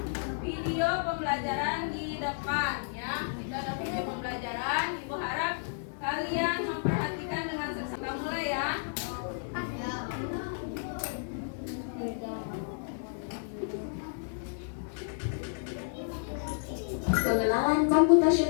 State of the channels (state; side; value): silent; right; digital silence